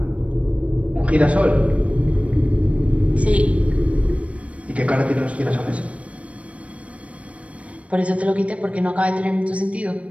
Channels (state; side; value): late; left; 0.064 ms